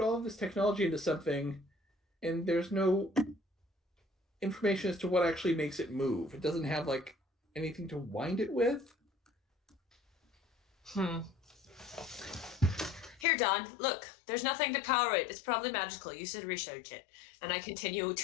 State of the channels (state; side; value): drops out; right; at 13.2 s